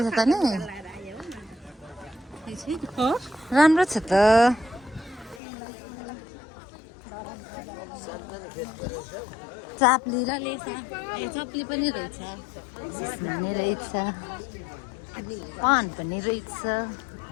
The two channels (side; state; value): right; drops out; at 5.4 s